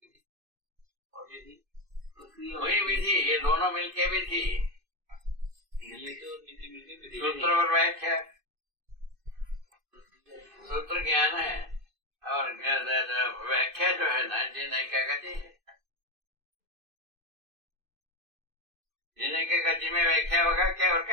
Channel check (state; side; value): late; left; 2.5 ms